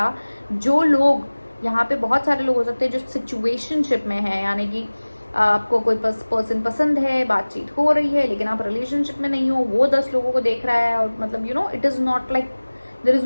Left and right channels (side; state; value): both; inverted; correlation -1.00